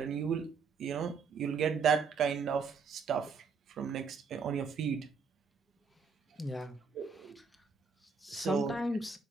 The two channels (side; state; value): left; quieter; 5.3 dB